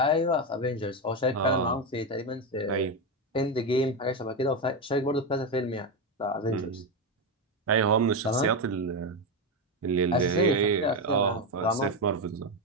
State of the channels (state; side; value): normal; both; correlation 0.11